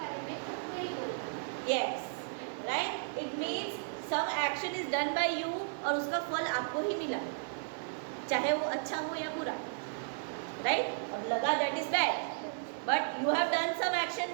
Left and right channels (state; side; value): silent; left; digital silence